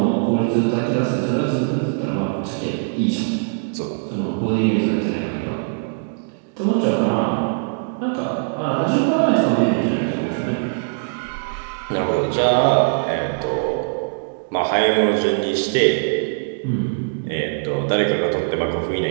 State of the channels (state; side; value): silent; left; digital silence